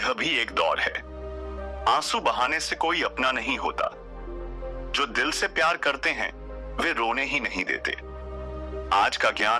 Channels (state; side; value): identical; both; correlation 1.00